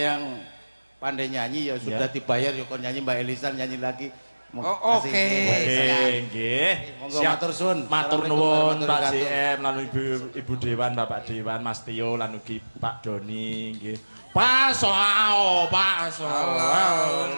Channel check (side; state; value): both; inverted; correlation -1.00